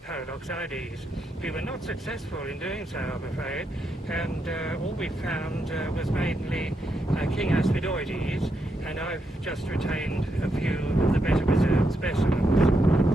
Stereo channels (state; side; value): normal; both; correlation 0.81